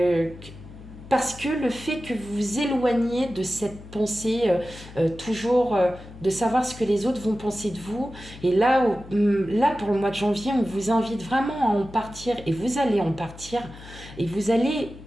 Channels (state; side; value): noise; left; hum, 17 dB below the sound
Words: Parce que le fait que vous vous éloignez de cette pensée toujours de savoir ce que les autres vont penser de vous, et là pour le mois de janvier, on vous invite vraiment à en partir, et vous allez en partir, et vous allez